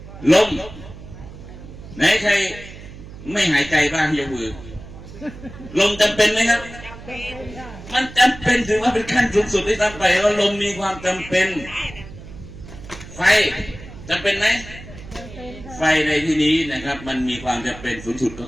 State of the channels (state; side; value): noise; right; hum, 15 dB below the sound